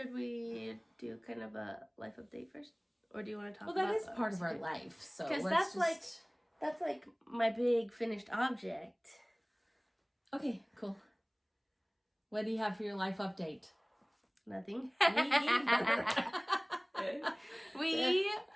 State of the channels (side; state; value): both; identical; correlation 1.00